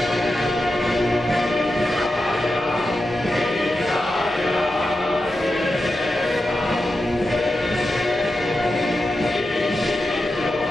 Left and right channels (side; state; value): both; normal; correlation 0.90